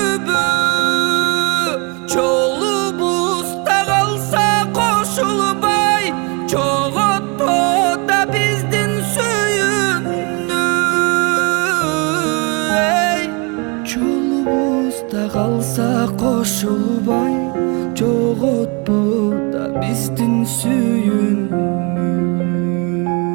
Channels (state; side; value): quieter; left; 31.4 dB